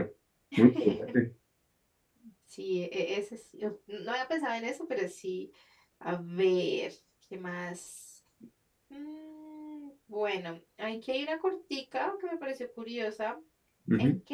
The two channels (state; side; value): identical; both; correlation 1.00